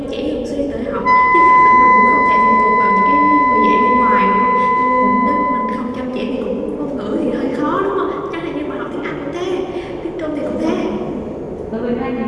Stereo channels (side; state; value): both; identical; correlation 1.00